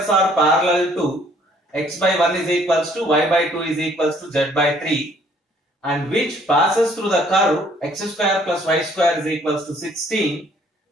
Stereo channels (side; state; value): both; normal; correlation 0.61